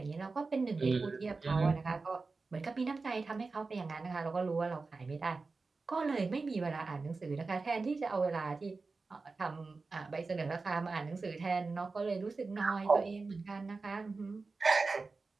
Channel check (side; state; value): left; quieter; 4.0 dB